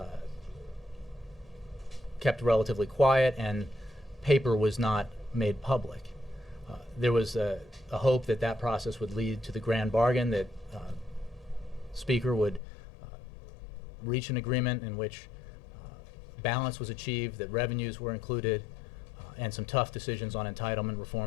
kept relatively quiet and paper was not made public. There was a hope that that process would lead to the grand bargain, that Speaker would reach an agreement in which balance was achieved, that revenues were included, and some tough decisions on entitlement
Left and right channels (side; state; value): right; drops out; at 12.6 s